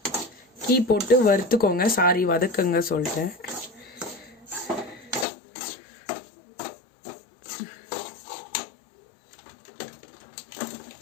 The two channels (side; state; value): right; drops out; at 5.2 s